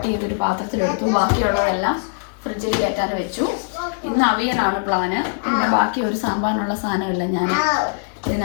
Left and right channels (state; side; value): silent; right; digital silence